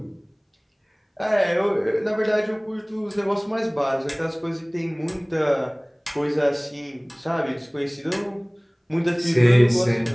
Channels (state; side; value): identical; both; correlation 1.00